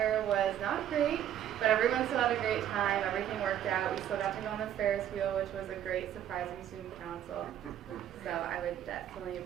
was not great, but everyone still had a great time. Everything worked out. We still got to go on the Ferris wheel, which was a great surprising student council. So I would definitely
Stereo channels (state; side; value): quieter; left; 10.8 dB